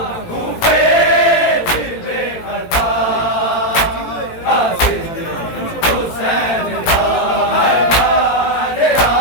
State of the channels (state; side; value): late; right; 18 ms